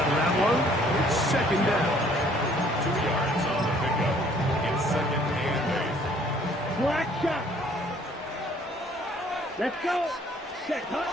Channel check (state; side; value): normal; both; correlation 0.59